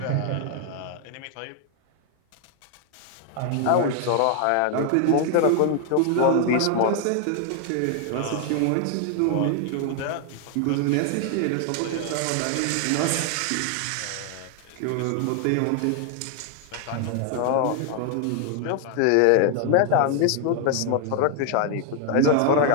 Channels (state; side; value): different; both; correlation 0.00